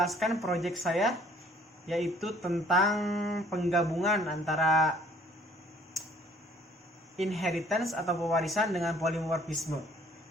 proyek saya, yaitu tentang penggabungan antara inheritance atau pewarisan dengan polimorfisme.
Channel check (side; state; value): both; normal; correlation 0.57